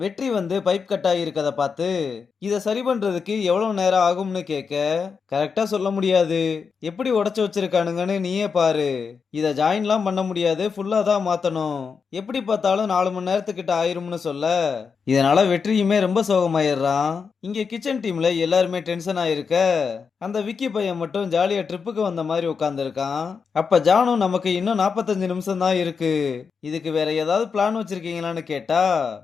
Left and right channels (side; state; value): right; quieter; 5.7 dB